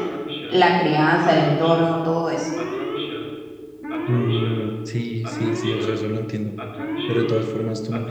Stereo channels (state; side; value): identical; both; correlation 1.00